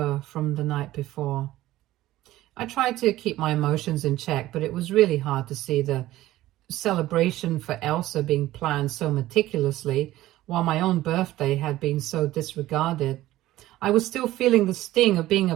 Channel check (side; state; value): left; quieter; 15.6 dB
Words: from the night before. I tried to keep my emotions in check, but it was really hard to see the celebration for Elsa being planned so meticulously, while my own birthday had been so disregarded. I was still feeling the sting of being